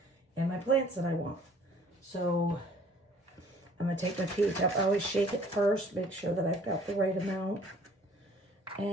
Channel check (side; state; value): both; normal; correlation 0.55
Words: in my plants than I want. So I'm going to take my pH up. I always shake it first, make sure that I've got the right amount.